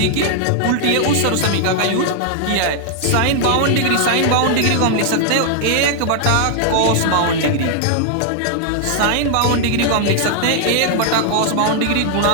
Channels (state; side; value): different; both; correlation 0.00